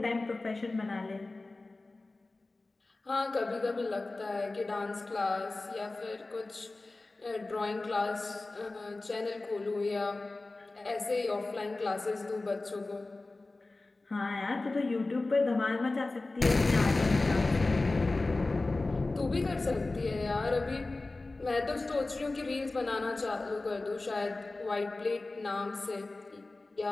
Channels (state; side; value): quieter; right; 3.2 dB